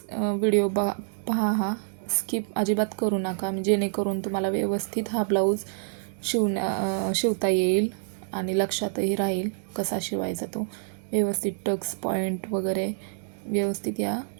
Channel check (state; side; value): silent; left; digital silence